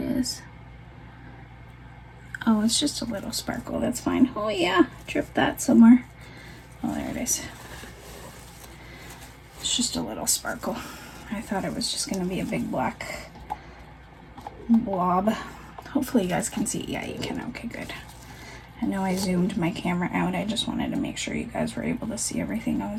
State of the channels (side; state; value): both; identical; correlation 1.00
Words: is. Oh, it's just a little sparkle. That's fine. Oh yeah, drip that somewhere. Oh, there it is. It's just a little sparkle. I thought it was just going to be a big black blob. Hopefully you guys can see. Yeah, you can. Okay, good. I know I zoomed my camera out. I just wanted to make sure you guys were able to see everything I